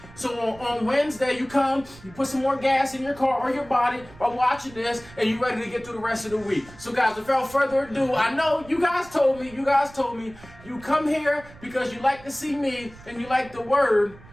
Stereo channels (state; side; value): noise; right; rumble, 21 dB below the sound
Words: So on Wednesday, you come, you put some more gas in your car or your body by watching this, and you're ready to get through the rest of the week. So guys, without further ado, I know you guys told me, you come here because you like to see me and you like the word,